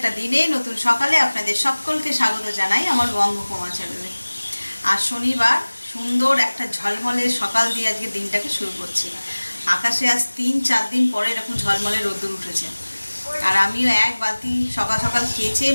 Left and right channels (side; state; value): both; inverted; correlation -1.00